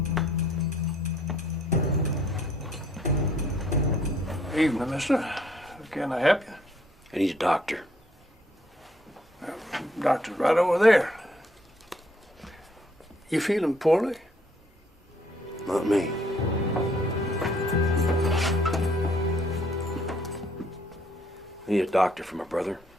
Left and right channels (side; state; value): both; normal; correlation 0.65